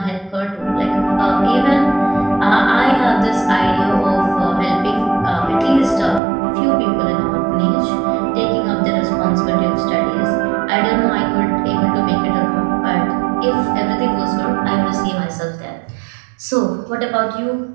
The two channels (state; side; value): drops out; left; at 6.2 s